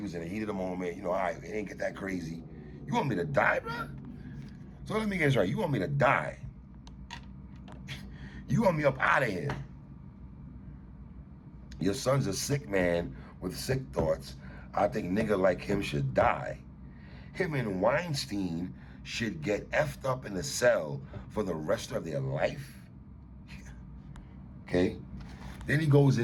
was in the heat of the moment. You know, all right, it ain't get that crazy. You want me to die, bro? So let me get this right. You want me to die? You want me up out of here? Your son's a sick man with sick thoughts. I think nigga like him should die. Him and Weinstein should get effed up in the cell for the rest of their life. Okay? Then he goes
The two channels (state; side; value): identical; both; correlation 1.00